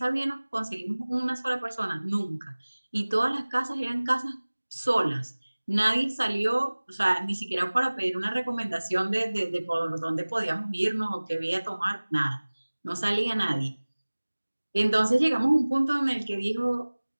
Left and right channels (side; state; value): both; inverted; correlation -1.00